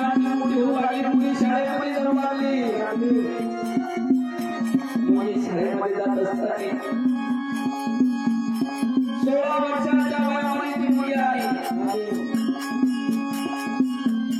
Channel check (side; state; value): both; identical; correlation 1.00